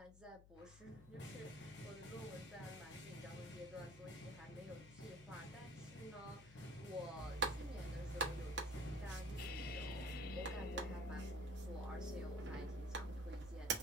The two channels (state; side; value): noise; left; hum, 18 dB below the sound